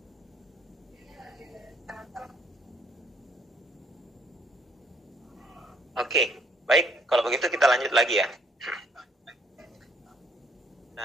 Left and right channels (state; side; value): normal; both; correlation 0.66